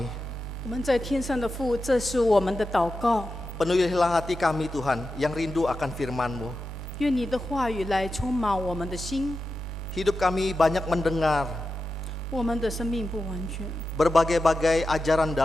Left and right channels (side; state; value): both; normal; correlation 0.91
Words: 我们在天上的父，这是我们的祷告。 Penuhilah hati kami Tuhan yang rindu akan firman-Mu. 愿你的话语来充满我们的心。 Hidup kami banyak mendengar 我们的生命不完全， berbagai-bagai ajaran